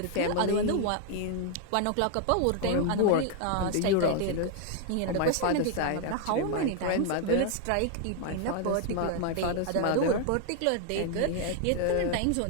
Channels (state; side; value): different; both; correlation 0.00